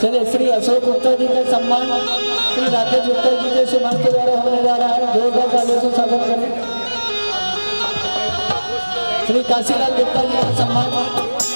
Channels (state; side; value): inverted; both; correlation -1.00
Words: चलिए, श्री अशोक गुप्ता जी का सम्मान श्री राकेश गुप्ता जी के सम्मान के द्वारा होने जा रहा है। जोरदार तालियों से स्वागत करें। श्री काशीलाल गुप्ता जी का सम्मान